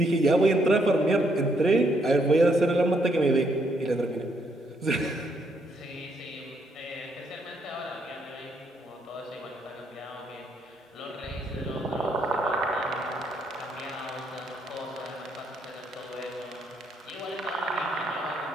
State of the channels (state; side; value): normal; both; correlation 0.73